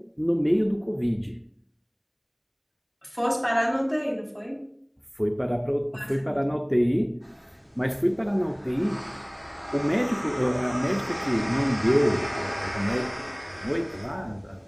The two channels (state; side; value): identical; both; correlation 1.00